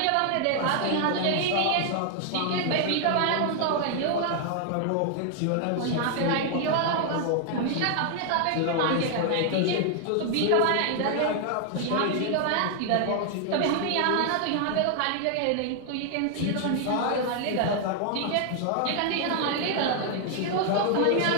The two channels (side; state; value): both; different; correlation 0.00